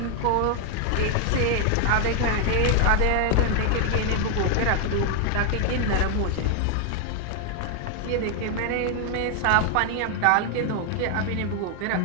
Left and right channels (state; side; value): different; both; correlation 0.00